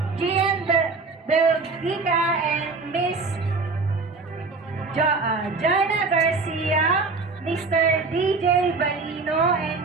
Belgica and Miss Jana Garcia, Mr. DJ Balino and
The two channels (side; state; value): left; quieter; 4.1 dB